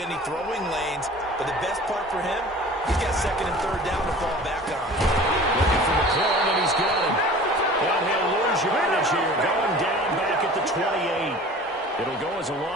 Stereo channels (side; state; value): both; normal; correlation 0.43